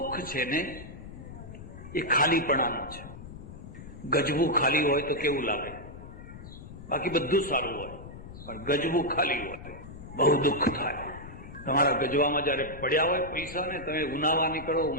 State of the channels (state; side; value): noise; left; rumble, 14 dB below the sound